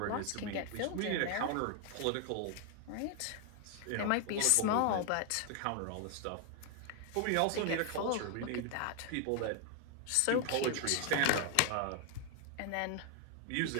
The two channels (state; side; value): different; both; correlation 0.00